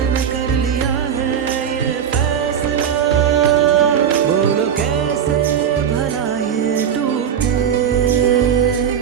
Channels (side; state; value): left; quieter; 8.4 dB